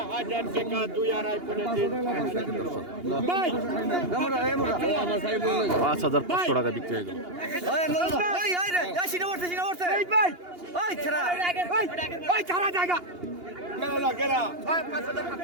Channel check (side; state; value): left; late; 2.8 ms